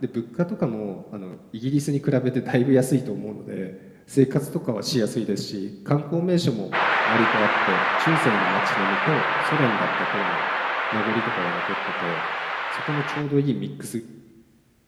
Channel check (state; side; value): identical; both; correlation 1.00